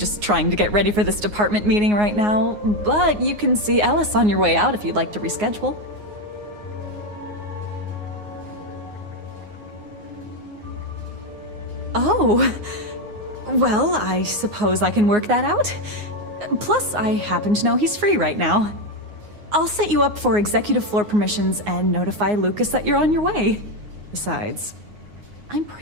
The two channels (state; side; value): late; left; 9.6 ms